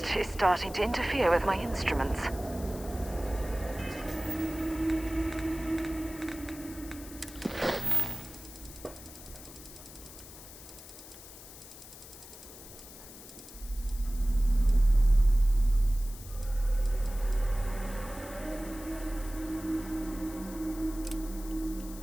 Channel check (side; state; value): left; noise; hiss, 16 dB below the sound